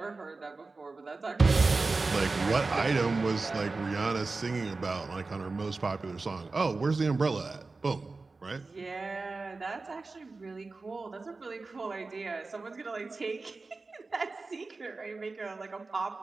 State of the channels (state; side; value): quieter; left; 3.8 dB